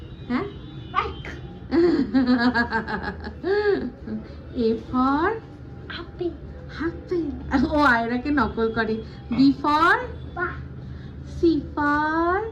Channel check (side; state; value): both; identical; correlation 1.00